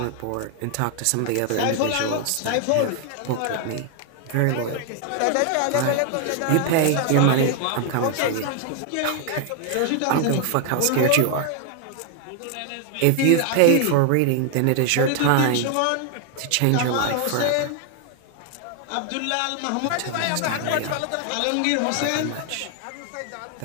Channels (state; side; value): different; both; correlation 0.00